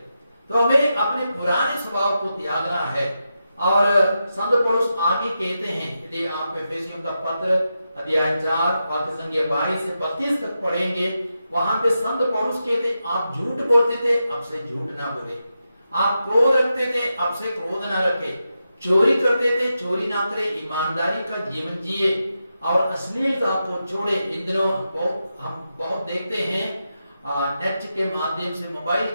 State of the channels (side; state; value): both; inverted; correlation -0.88